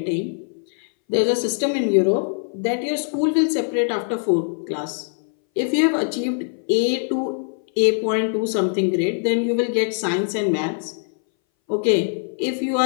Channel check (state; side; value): silent; right; 61 dB below the other